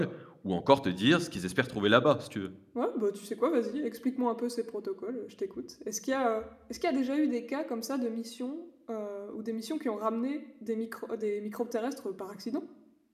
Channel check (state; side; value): identical; both; correlation 1.00